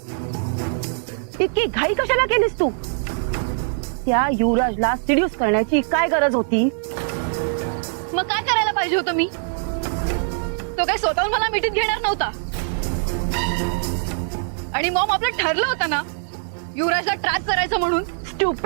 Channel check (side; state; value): left; silent; digital silence